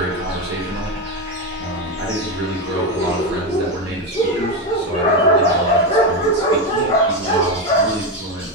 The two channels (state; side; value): normal; both; correlation 0.12